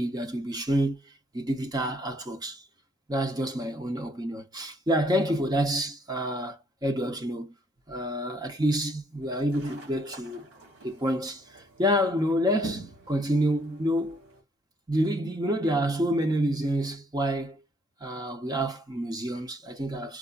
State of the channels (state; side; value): normal; both; correlation 0.67